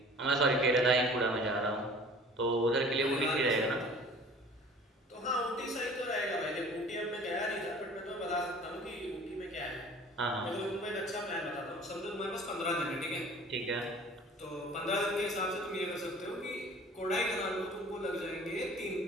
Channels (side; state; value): both; normal; correlation 0.47